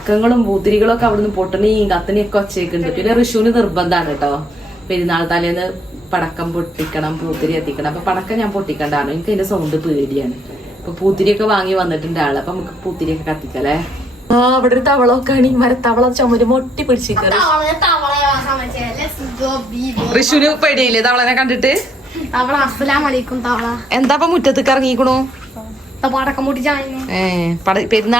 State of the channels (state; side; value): normal; both; correlation 0.72